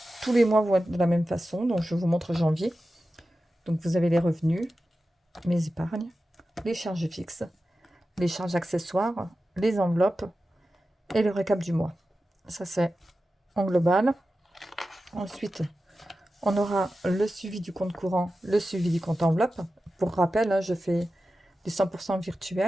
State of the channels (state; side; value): normal; both; correlation 0.93